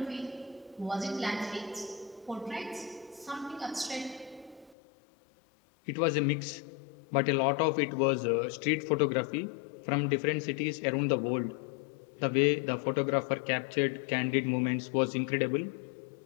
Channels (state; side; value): drops out; right; at 4.8 s